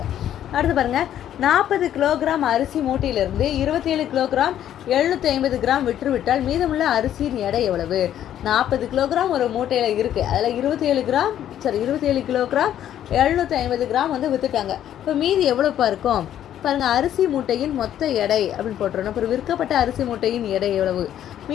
அடுத்து பாருங்கள், 40 கிலோகிராம் அரிசி மூட்டையிலிருந்து 27 கிலோகிராம் 750 கிராம் விற்றுவிட்டால் மீதமுள்ள அரிசியின் எடை எவ்வளவு? 40 கிலோகிராம் ஒரு மூட்டையில் இருக்குது, அதில் 27 கிலோகிராம் 750 கிராம் வந்து விற்றுட்டாங்க. இப்போ மீதி எவ்வளோப்பா இருக்கும் பாருங்கள், அரிசி மூட்டையின் மொத்த எடை அப்படின்னு போட்டுறணும். அப்புறம் விற்கப்பட்ட அரிசி மூட்டையின் எடை எவ்வளவு?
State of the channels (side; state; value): right; quieter; 11.0 dB